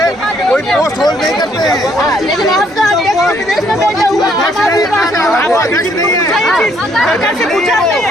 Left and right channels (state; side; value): normal; both; correlation 0.68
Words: कोई पोस्ट होल्ड नहीं करते हैं। लेकिन आपका अध्यक्ष विदेश में बैठा हुआ है। अध्यक्ष नहीं है, सरकार से पूछा